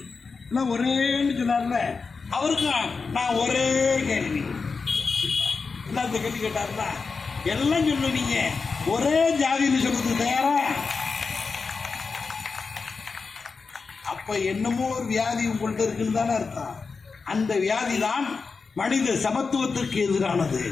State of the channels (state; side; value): quieter; right; 4.7 dB